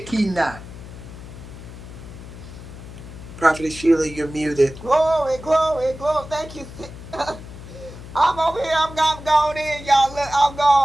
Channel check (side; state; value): left; noise; hum, 14 dB below the sound